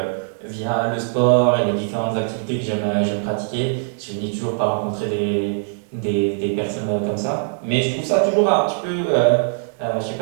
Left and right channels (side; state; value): left; silent; digital silence